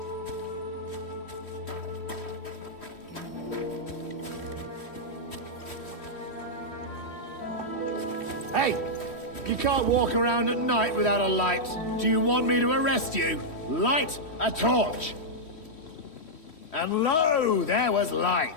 Hey! You can't walk around at night without a light. Do you want me to arrest you? Light a torch! And lo, there was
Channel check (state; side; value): late; right; 3.1 ms